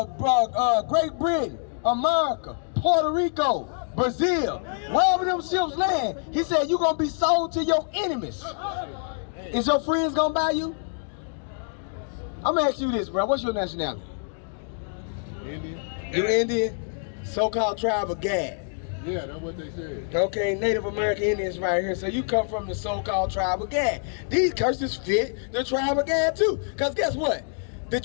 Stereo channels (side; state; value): right; silent; digital silence